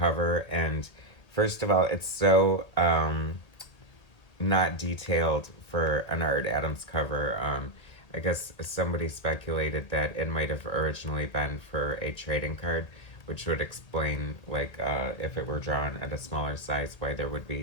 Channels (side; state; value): right; late; 1.7 ms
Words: And first of all, it's so not detailed for an Art Adams cover. I guess somebody speculated that it might have originally been for a trading card, which would explain, like, if it were drawn at a smaller size, why there would